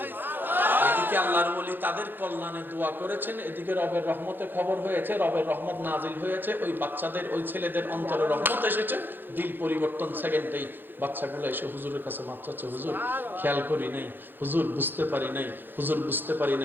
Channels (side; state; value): left; late; 0.095 ms